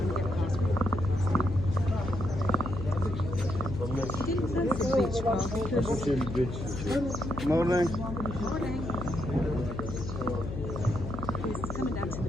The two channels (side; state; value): left; noise; hum, 6 dB below the sound